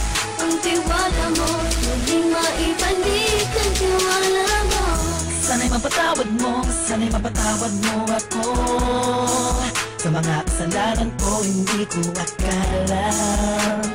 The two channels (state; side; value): identical; both; correlation 1.00